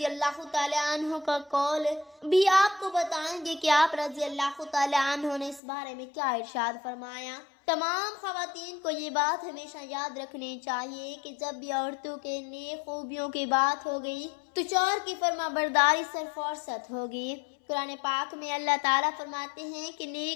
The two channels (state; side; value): drops out; right; at 5.6 s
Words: اللہ تعالیٰ عنہ کا قول بھی آپ کو بتائیں گے کہ آپ رضی اللہ تعالیٰ عنہ نے اس بارے میں کیا ارشاد فرمایا۔ تمام خواتین کو یہ بات ہمیشہ یاد رکھنی چاہیے کہ جب بھی عورتوں کے نیک خوبیوں کی بات ہوگی تو شوہر کی فرما برداری سے فرصت ہوگی۔ قرآن پاک میں اللہ تعالیٰ فرماتے ہیں کہ